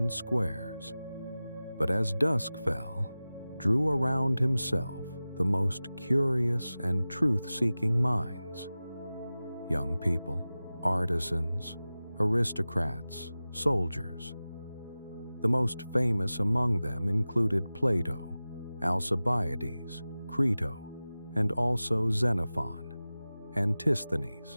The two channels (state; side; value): inverted; both; correlation -0.96